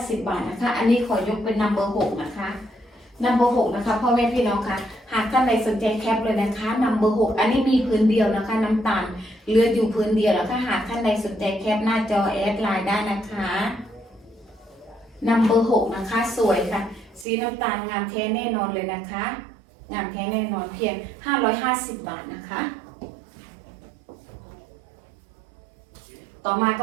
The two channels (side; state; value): left; drops out; at 17.2 s